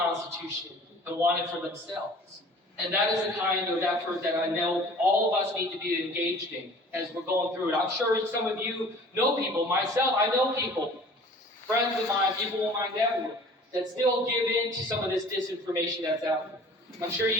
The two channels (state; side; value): normal; both; correlation 0.47